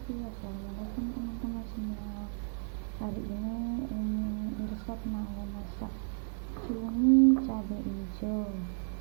Assalamualaikum teman-teman semua. Hari ini Irsad mau masak cumi cabai hijau.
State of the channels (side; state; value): left; silent; 56 dB below the other